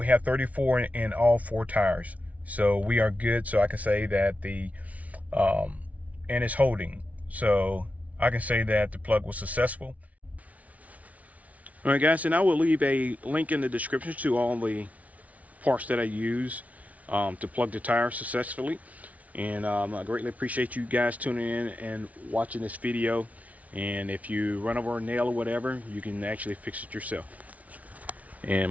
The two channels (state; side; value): late; left; 0.069 ms